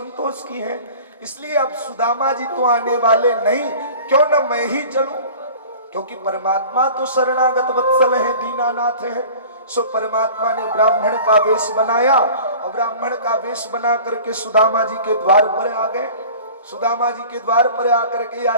की है। इसलिए अब सुदामा जी तो आने वाले नहीं, क्यों न मैं ही चलूं, क्योंकि परमात्मा तो शरणागत वत्सल है, दीनानाथ है। सो परमात्मा ने ब्राह्मण का वेश बनाया और ब्राह्मण का वेश बना करके सुदामा जी के द्वार पर आ गए। सुदामा जी के द्वार पर आकर के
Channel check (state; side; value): inverted; both; correlation -0.42